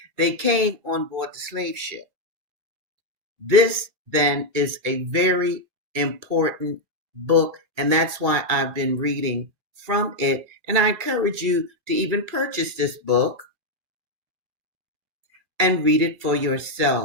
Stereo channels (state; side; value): late; left; 2.2 ms